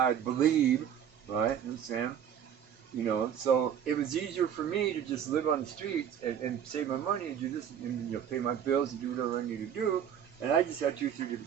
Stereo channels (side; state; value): left; quieter; 8.9 dB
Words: believe, right? You know what I'm saying? So it was easier for me to just live on the streets and save my money and do this and pay my bills and do whatever I need to do, and I just had 2 or 3